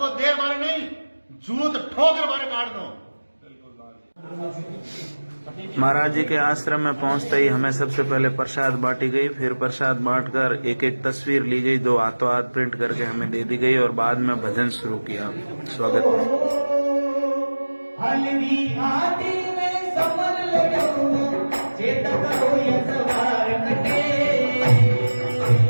देर बारे नहीं, जूत ठोकर बारे काट दो। महाराज जी के आश्रम में पहुंचते ही हमें सबसे पहले प्रसाद बांटी गई, फिर प्रसाद बांटकर एक एक तस्वीर ली गई, 2 हाथों हाथ प्रिंट करके हमें दे दी गई और बाद में भजन शुरू किया। स्वागत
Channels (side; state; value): both; inverted; correlation -1.00